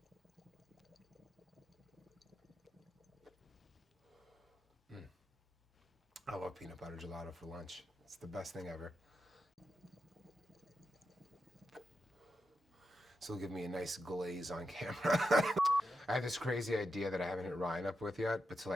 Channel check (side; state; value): both; normal; correlation 0.87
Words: I love peanut butter gelato for lunch. It's the best thing ever. So it'll give me a nice glaze on camera. I have this crazy idea that I haven't hit Ryan up with yet, but